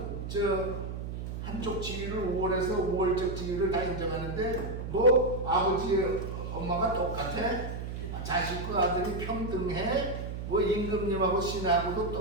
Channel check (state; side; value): noise; right; hum, 6 dB below the sound